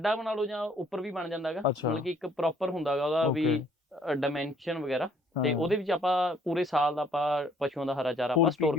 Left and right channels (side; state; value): both; normal; correlation 0.61